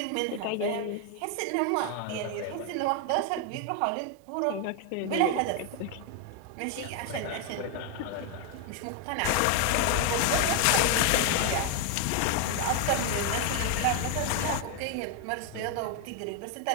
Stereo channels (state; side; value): different; both; correlation 0.01